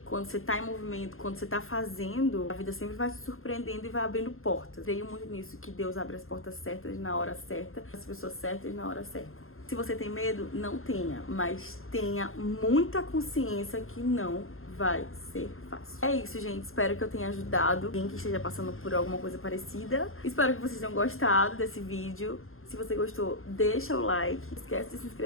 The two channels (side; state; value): right; late; 0.61 ms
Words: quando você tá em movimento, quando você tá fazendo, a vida sempre vai te surpreendendo e vai abrindo portas. Creio muito nisso, que Deus abre as portas certas na hora certa, as pessoas certas na hora certa. Se você tem medo, não tenha, mas tenha muita consciência que não vai ser fácil. É isso, gente. Espero que eu tenha ajudado quem que esteja passando por alguma coisa parecida. Espero que vocês tenham gostado desse vídeo. Se você gostou, deixa o like. Não esquece de se